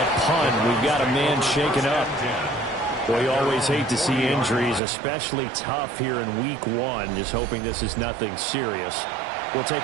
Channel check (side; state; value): left; drops out; at 4.8 s